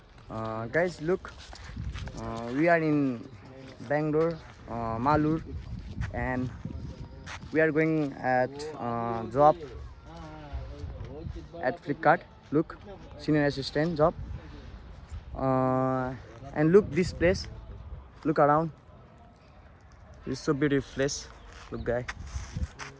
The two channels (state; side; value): identical; both; correlation 1.00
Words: guys look, we are in Bangalore, Malur, and we are going at job at Flipkart. Look, senior assistant job, and look this place, look around, it's so beautiful place. Look guy,